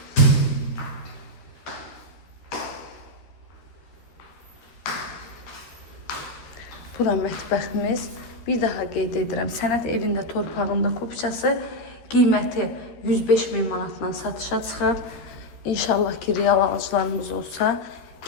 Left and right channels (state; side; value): late; right; 12 ms